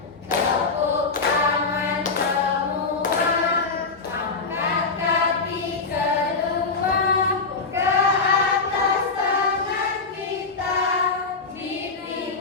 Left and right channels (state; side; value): quieter; right; 4.3 dB